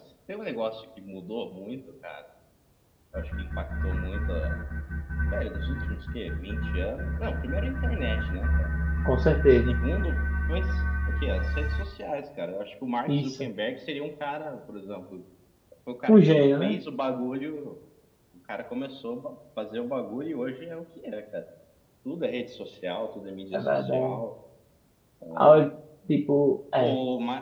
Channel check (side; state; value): both; identical; correlation 1.00